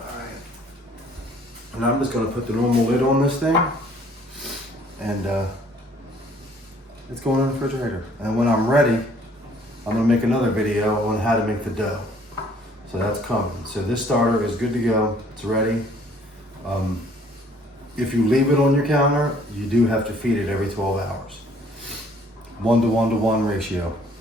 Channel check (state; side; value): normal; both; correlation 0.59